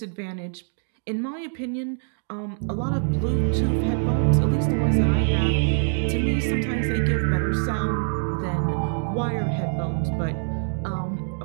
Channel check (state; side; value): silent; left; 59 dB below the other